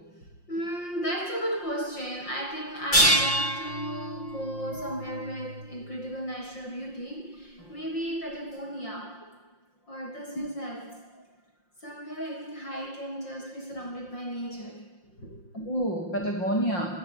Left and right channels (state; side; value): late; right; 5.6 ms